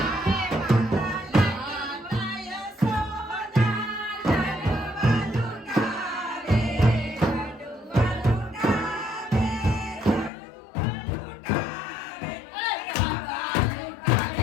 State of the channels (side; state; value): right; drops out; at 10.3 s